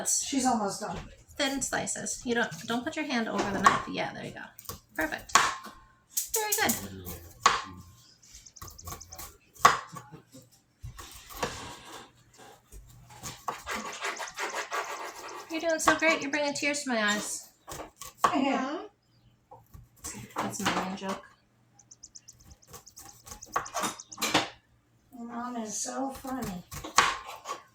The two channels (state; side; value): identical; both; correlation 1.00